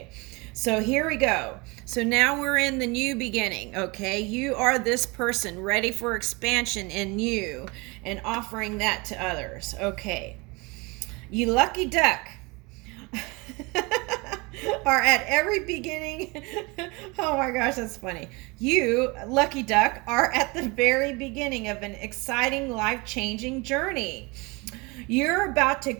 so here we go. So now we're in the new beginning, okay? You are this person ready for expansion in you and offering that to others, okay? You lucky duck. Are at every beginning. Oh my gosh, that's funny. You, lucky duck, are at the very beginning of an exciting, life-changing journey. You're about to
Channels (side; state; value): left; quieter; 26.6 dB